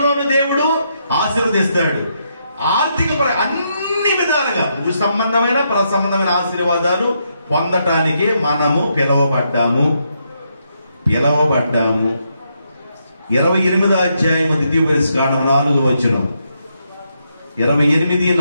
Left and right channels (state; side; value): inverted; both; correlation -0.79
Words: దేవుడు ఆశీర్వదిస్తాడు. ఆర్థిక అన్ని విధాలుగా భూ సంబంధమైన పర సంబంధమైన ఆశీర్వాదాలు పొందటానికి మనము పిలవబడ్డాము. 28వ అధ్యాయం 4